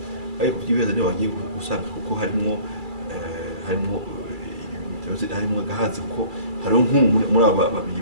ariko byibeza niyo bagiye gusanga kuko harimo gahazi kuko hariho muri aba babiri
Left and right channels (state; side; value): late; left; 2.3 ms